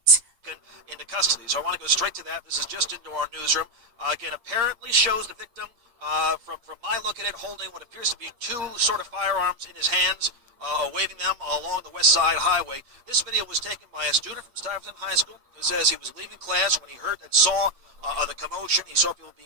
into custody. So I want to go straight to that. This is just into our newsroom. Again, apparently shows the victim, from my look at it, holding what appears to be two sort of firearms in his hands, waving them along the West Side Highway. This video was taken by a student from Stuyvesant High School who says he was leaving class when he saw the commotion. He saw people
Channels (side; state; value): left; late; 8.4 ms